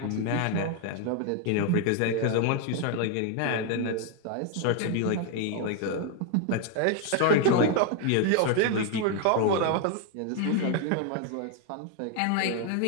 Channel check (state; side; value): different; both; correlation 0.01